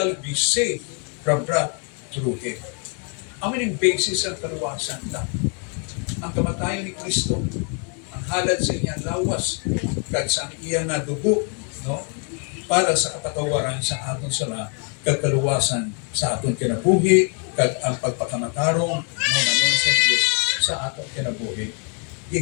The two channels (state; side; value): quieter; right; 39.8 dB